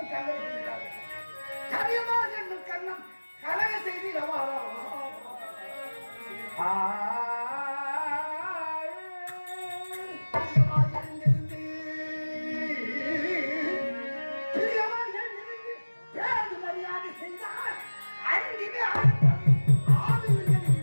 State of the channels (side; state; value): both; inverted; correlation -1.00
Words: கரியமா என்னும் கண்ணம் கலக செய்தி ரவாரம். மரியாதை செய்தால் அறிவிலே